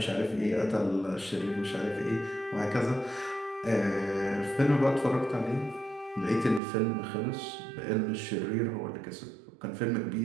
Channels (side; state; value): left; drops out; at 6.6 s